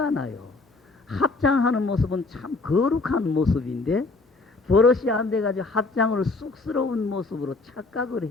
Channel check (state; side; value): quieter; right; 3.6 dB